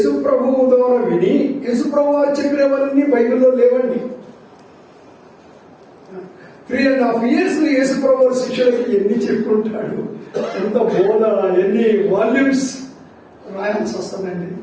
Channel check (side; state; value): both; identical; correlation 1.00